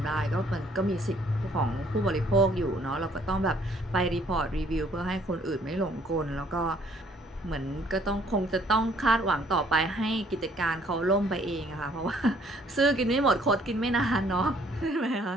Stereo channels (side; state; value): both; normal; correlation 0.62